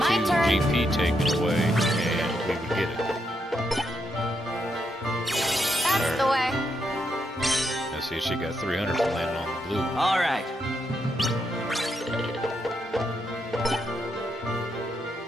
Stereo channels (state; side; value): normal; both; correlation 0.80